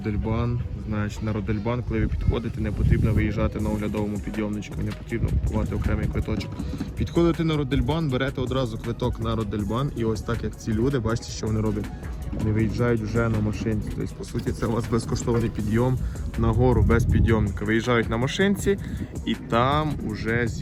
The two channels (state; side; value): identical; both; correlation 1.00